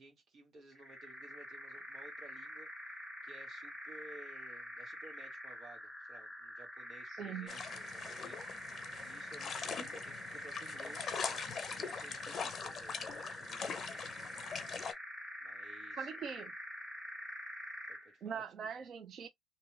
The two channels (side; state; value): both; normal; correlation 0.74